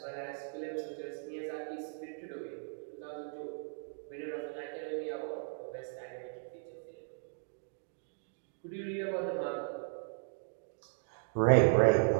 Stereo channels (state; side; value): silent; left; digital silence